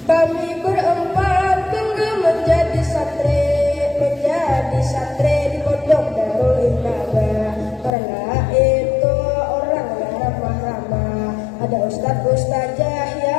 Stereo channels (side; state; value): right; drops out; at 7.9 s